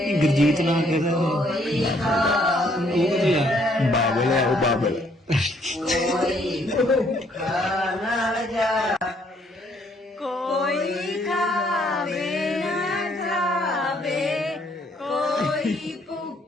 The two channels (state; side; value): normal; both; correlation 0.66